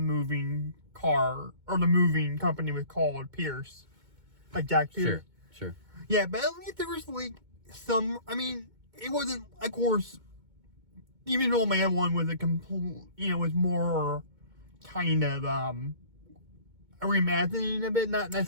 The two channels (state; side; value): late; left; 2.2 ms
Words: car or the moving company was called Pierce, like Jack Pierce. Sure. Yeah, but at least there was like some. I mean, it wasn't. Of course, the Invisible Man one was a complete. Was more kind of a reimagining of it, not